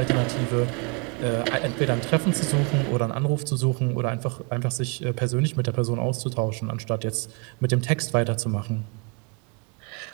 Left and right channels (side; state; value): left; quieter; 32.8 dB